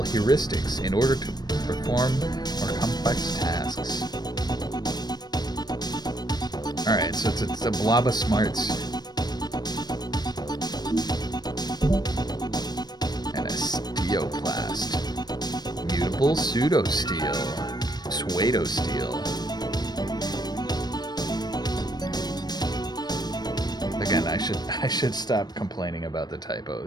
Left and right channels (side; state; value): right; late; 0.19 ms